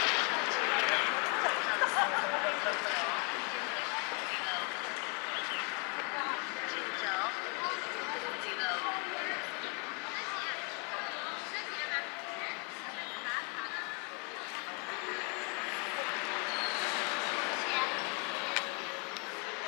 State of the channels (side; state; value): right; quieter; 35.6 dB